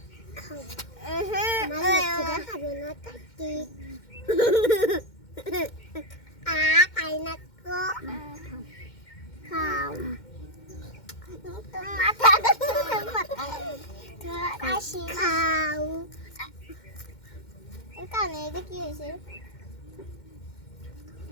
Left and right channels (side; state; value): right; late; 2.1 ms